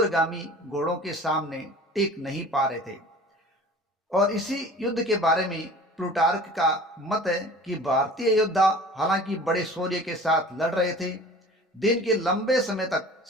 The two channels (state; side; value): normal; both; correlation 0.43